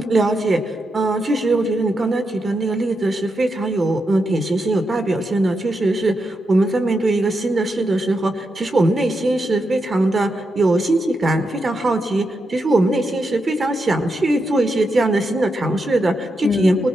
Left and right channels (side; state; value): both; normal; correlation 0.85